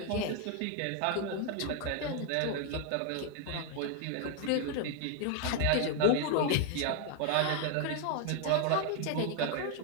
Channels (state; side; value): different; both; correlation 0.00